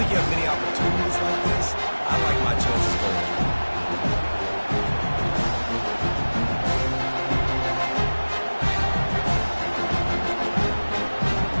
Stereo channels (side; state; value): both; inverted; correlation -1.00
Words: think you have many opportunities like this. I like my chances going for it.